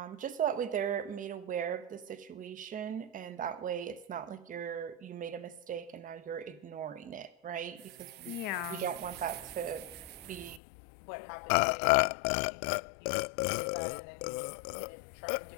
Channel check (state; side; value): drops out; right; at 10.6 s